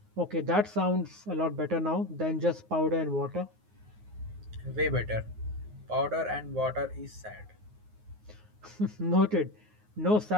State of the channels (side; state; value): left; late; 9.5 ms